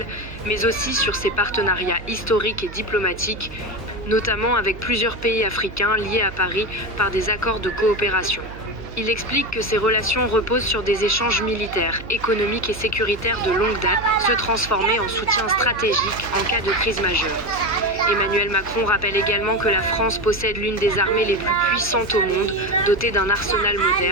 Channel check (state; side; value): noise; right; hum, 15 dB below the sound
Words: mais aussi sur ses partenariats historiques et diplomatiques, notamment avec plusieurs pays africains liés à Paris par des accords de coopération. Il explique que ces relations reposent sur des échanges militaires, économiques et sécuritaires de longue date, se transformer en soutien stratégique en cas de crise majeure. Emmanuel Macron rappelle également que la France possède l'une des armées les plus puissantes au monde, dotée d'un arsenal